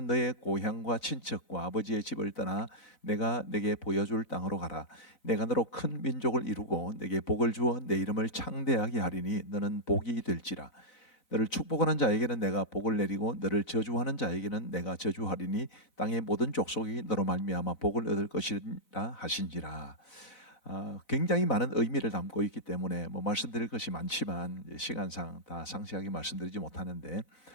너의 고향과 친척과 아버지의 집을 떠나 내가 내게 보여줄 땅으로 가라. 내가 너로 큰 민족을 이루고 내게 복을 주어 내 이름을 창대하게 하리니 너는 복이 될지라. 너를 축복하는 자에게는 내가 복을 내리고 너를 저주하는 자에게는 내가 저주하리니 땅의 모든 족속이 너로 말미암아 복을 얻을 것이라 하신지라. 굉장히 많은 의미를 담고 있기 때문에 말씀드릴 것이 많지만 시간상 다 상세하게 말씀드리지 못하는데,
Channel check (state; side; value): late; right; 4.0 ms